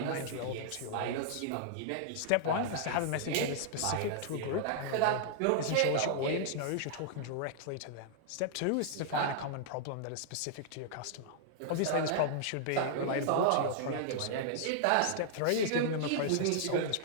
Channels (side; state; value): both; different; correlation -0.01